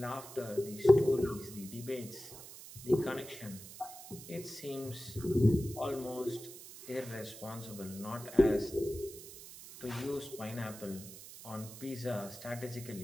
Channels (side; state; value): right; noise; hiss, 14 dB below the sound